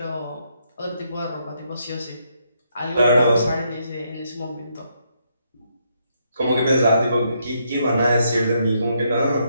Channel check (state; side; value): inverted; both; correlation -0.76